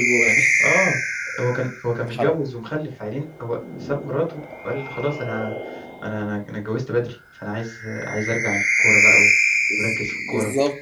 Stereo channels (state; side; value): identical; both; correlation 1.00